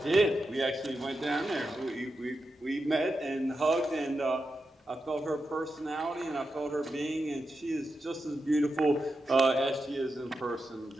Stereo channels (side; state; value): both; normal; correlation 0.88